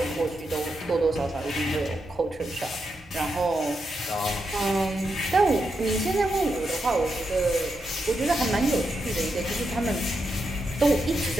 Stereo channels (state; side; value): normal; both; correlation 0.84